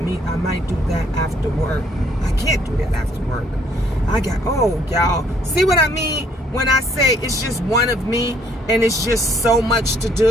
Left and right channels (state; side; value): normal; both; correlation 0.65